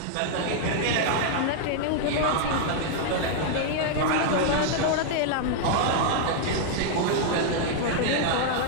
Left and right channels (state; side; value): different; both; correlation 0.00